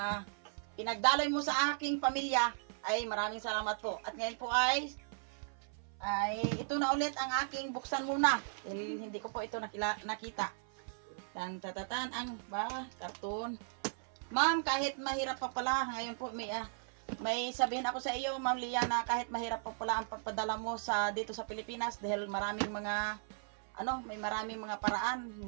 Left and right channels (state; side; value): silent; left; 53 dB below the other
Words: pinagdaloy mo sa aking pamilya, ay maraming salamat po. At ngayon po ay ito na ulit ang aking buksan muna. Hindi ko po ito nakita. Tan ang karton. Ma'am, kahit mahirap pa pala, ngayon po may sabihin ako sa iyo, Ma'am Leah, na kahit mahirap pa pala ang pagpadala mo dito sa Pilipinas dahil may maraming mga paraan,